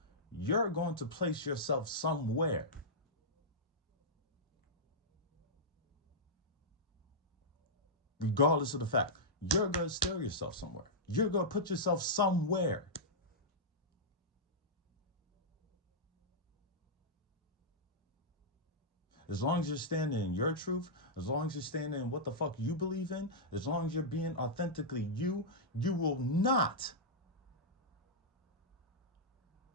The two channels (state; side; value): normal; both; correlation -0.10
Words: You're going to place yourself somewhere. Regardless of the fact, you're going to steer yourself somewhere. You're going to put yourself somewhere. As long as you're standing in your truth, as long as you're standing in what the fuck you believe in, as long as you're being authentically you, you will not